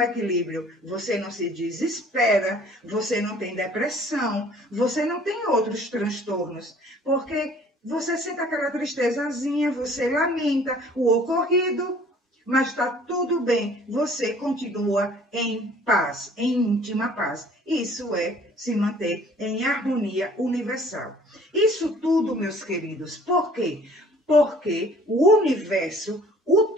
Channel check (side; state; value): both; normal; correlation 0.53